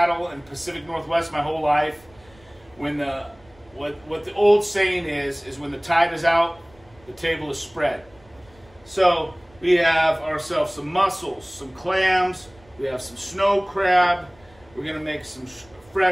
and Pacific Northwest my whole life, when what the old saying is when the tide is out, the table is spread. So we have ourselves some mussels, some clams, we have some snow crab, we're going to make some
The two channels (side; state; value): right; noise; rumble, 28 dB below the sound